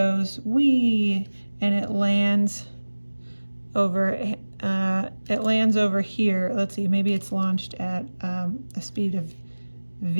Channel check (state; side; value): inverted; both; correlation -1.00